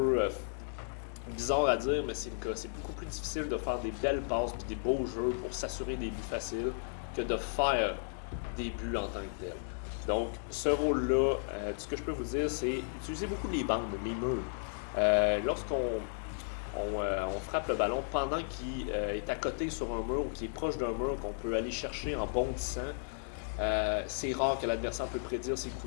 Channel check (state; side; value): silent; right; digital silence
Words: bizarre à dire, mais c'est le cas. C'est beaucoup plus difficile de faire des belles passes et des beaux jeux pour s'assurer des buts faciles que de faire des buts en tant que tel. Donc, ce rôle-là, ce que je peux vous dire, c'est utiliser beaucoup les bandes, les murs. Lorsqu'on frappe le ballon pendant qu'il est à côté sur un mur ou qu'il est proche d'un mur qu'on peut aller chercher en bondissant, c'est rare que l'adversaire peut prédire ces